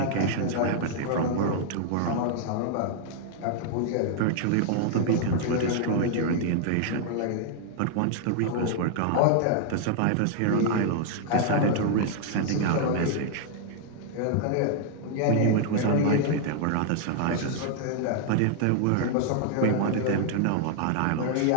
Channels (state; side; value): different; both; correlation 0.00